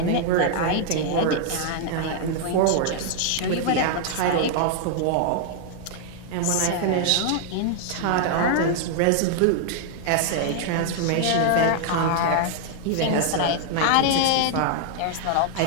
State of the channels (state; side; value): different; both; correlation 0.00